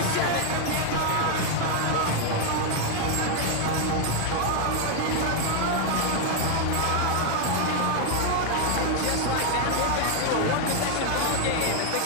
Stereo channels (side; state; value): both; different; correlation 0.00